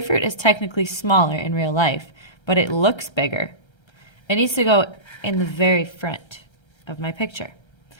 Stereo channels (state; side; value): late; right; 1.3 ms